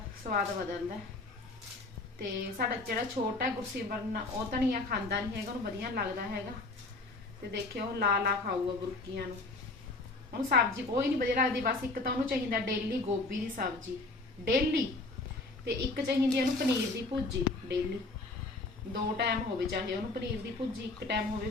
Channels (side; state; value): right; quieter; 3.3 dB